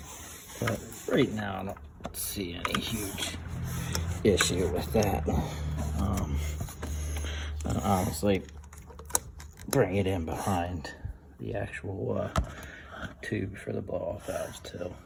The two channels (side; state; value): both; identical; correlation 1.00